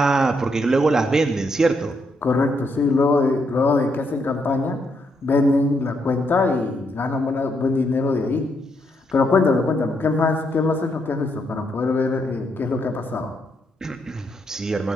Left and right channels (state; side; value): normal; both; correlation 0.77